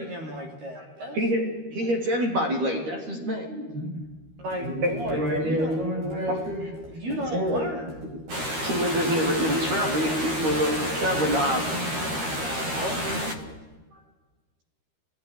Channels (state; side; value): late; left; 13 ms